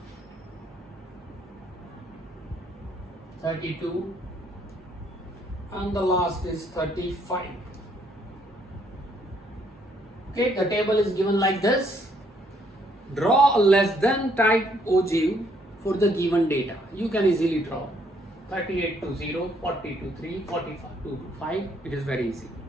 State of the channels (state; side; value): normal; both; correlation 0.68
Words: 32, and the last is 35. Okay, the table is given like this. Draw a less than type ogive for the given data. You can easily draw 38 to 0, 40 to 3, 45 to 5. It is very easy.